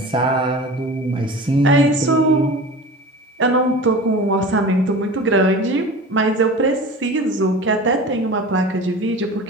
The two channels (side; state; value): both; normal; correlation 0.36